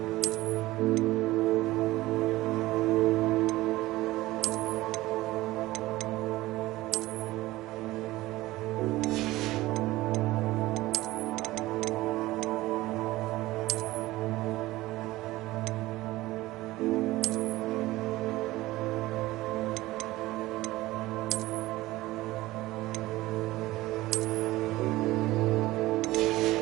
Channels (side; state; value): left; quieter; 18.0 dB